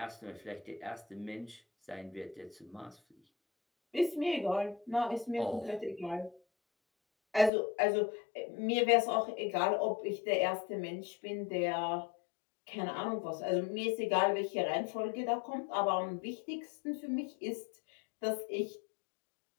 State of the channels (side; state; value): right; drops out; at 7.5 s